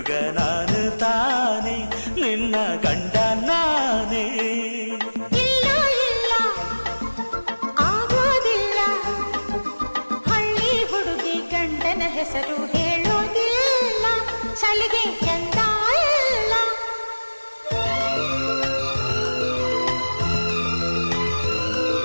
ನಾನು ತಾನೆ ನಿನ್ನ ಗಂಡ ನಾನೇ. ಇಲ್ಲ ಇಲ್ಲ ಆಗೋದಿಲ್ಲ, ಹಳ್ಳಿ ಹುಡುಗಿ ಗಂಡನ ಹೆಸರು ಹೇಳೋದಿಲ್ಲ, ಸಲಿಗೆ ಚಂದ ಇಲ್ಲ.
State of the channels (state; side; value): inverted; both; correlation -1.00